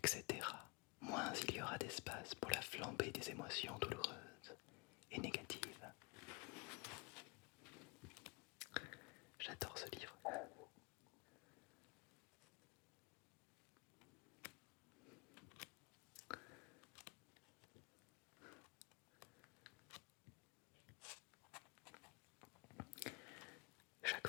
moins il y aura d'espace pour la flambée des émotions douloureuses et négatives. J'adore ce livre. Chaque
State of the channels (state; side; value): quieter; right; 28.0 dB